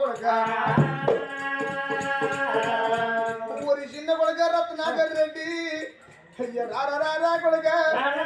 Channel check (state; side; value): identical; both; correlation 1.00